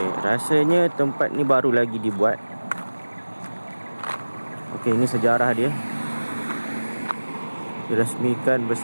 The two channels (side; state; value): both; inverted; correlation -1.00